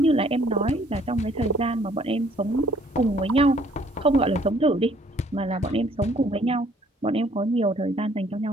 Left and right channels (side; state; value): both; normal; correlation 0.61